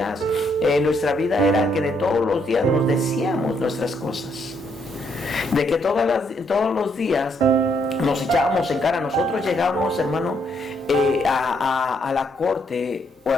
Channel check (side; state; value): both; normal; correlation 0.73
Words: nuestra vida era que de todos los días nos decíamos nuestras cosas, de que todos los días nos echábamos en cara. Nosotros llegábamos, hermano, a la corte